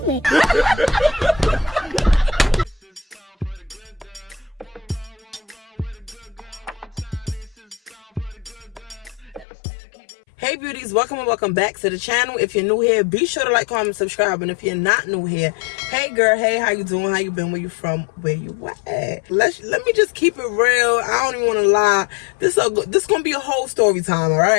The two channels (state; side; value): drops out; right; at 9.5 s